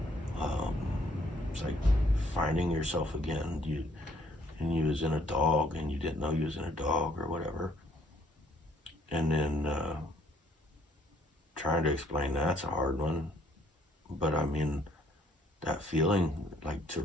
It's like finding yourself again. You was in a dog and you didn't know you was in a dog or whatever. And then trying to explain that's a hard one. But I mean, that feeling like to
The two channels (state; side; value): normal; both; correlation 0.64